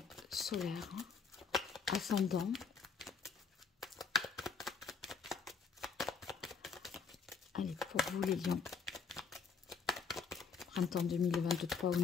solaire, ascendant. Allez, pour vous les lions, printemps 2023 au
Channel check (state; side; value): quieter; right; 5.6 dB